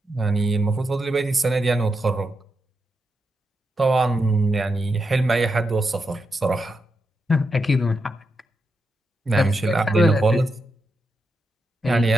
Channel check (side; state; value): both; normal; correlation 0.85